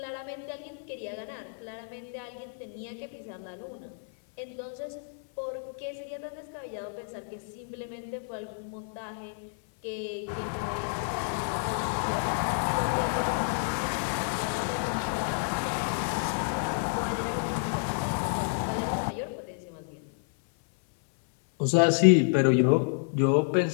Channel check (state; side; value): silent; right; 58 dB below the other